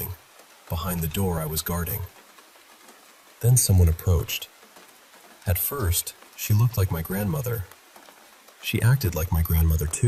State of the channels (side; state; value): both; identical; correlation 1.00